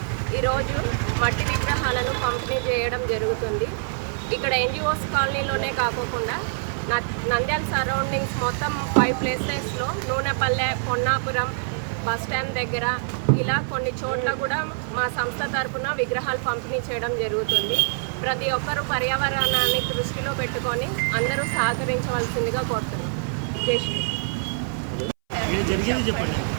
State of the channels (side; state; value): left; silent; 61 dB below the other